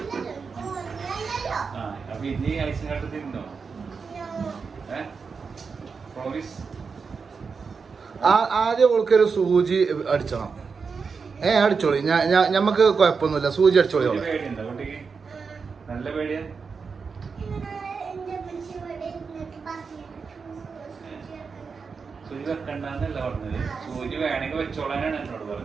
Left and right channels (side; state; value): left; quieter; 5.3 dB